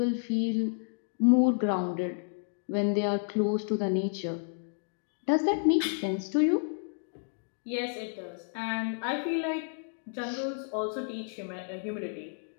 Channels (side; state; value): right; silent; 57 dB below the other